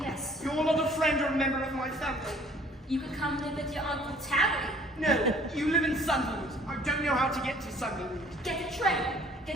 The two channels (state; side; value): normal; both; correlation 0.55